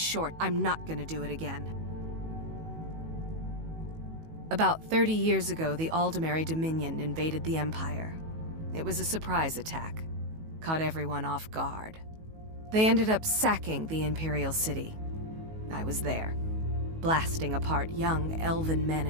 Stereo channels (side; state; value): left; late; 19 ms